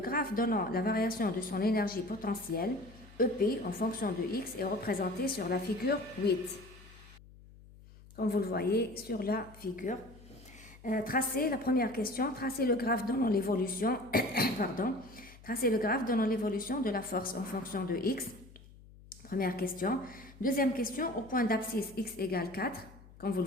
graphe donnant la variation de son énergie potentielle, EP, en fonction de x, est représenté sur la figure 8. Comme vous le voyez sur la figure. Tracez la première question, tracez le graphe donnant l'évolution, tracez le graphe donnant l'évolution de la force en fonction de x. Première question. Deuxième question, au point d'abscisse x égale 4, comme vous le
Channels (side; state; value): left; noise; hum, 21 dB below the sound